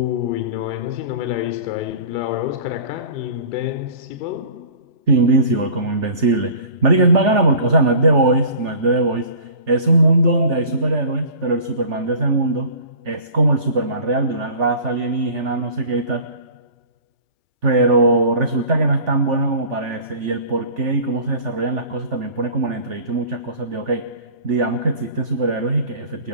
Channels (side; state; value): left; late; 3.4 ms